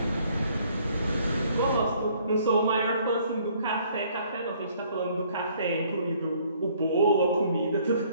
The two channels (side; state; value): both; inverted; correlation -0.62